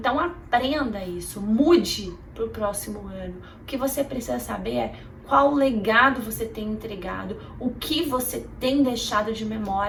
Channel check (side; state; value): both; identical; correlation 1.00